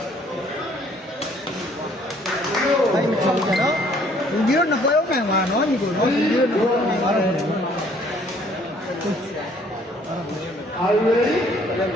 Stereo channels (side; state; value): both; normal; correlation 0.61